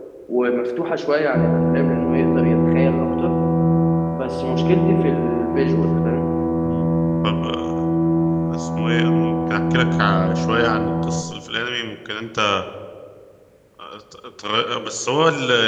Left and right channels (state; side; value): identical; both; correlation 1.00